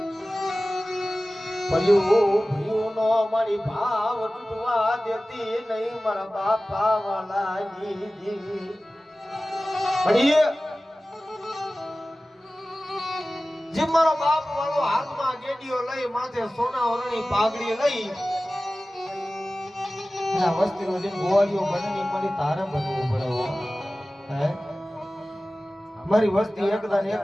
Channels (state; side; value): normal; both; correlation 0.97